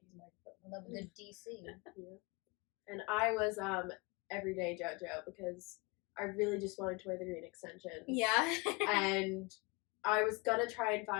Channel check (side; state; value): right; quieter; 27.0 dB